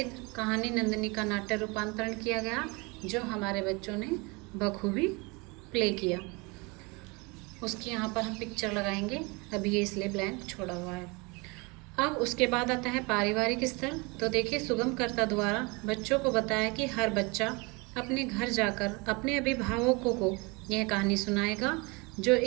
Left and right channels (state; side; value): quieter; left; 27.7 dB